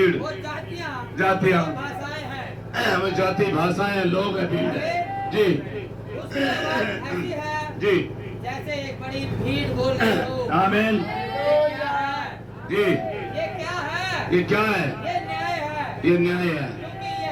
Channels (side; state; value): both; identical; correlation 1.00